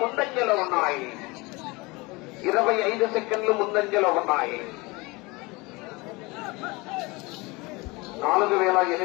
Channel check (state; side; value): quieter; right; 24.6 dB